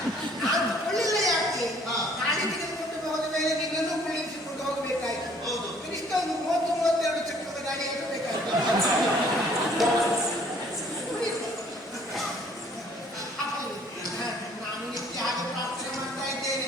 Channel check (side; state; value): both; normal; correlation 0.58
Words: ನಾನು ತಗೊಳ್ಳಿಲ್ಲ. ಯಾಕೆ ಹಾ. ಗಾಡಿ ತೆಗೆದುಕೊಂಡು ಹೋದ ಮೇಲೆ ನಿನ್ನನ್ನು ಕುಳ್ಳಿರಿಸಿಕೊಂಡು ಹೋಗಬೇಕಾಯ್ತು. ಹೌದು. ಕನಿಷ್ಠ ಒಂದು 30-32 ಚಕ್ರದ ಗಾಡಿ ಇರಬೇಕಾಯ್ತು. ನಾನು ನಿತ್ಯ ಹಾಗೆ ಪ್ರಾರ್ಥನೆ ಮಾಡ್ತಾ